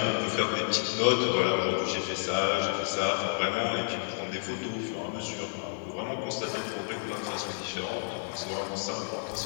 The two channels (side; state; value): right; silent; 58 dB below the other